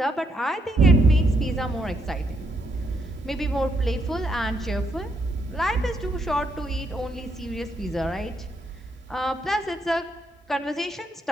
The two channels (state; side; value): normal; both; correlation 0.76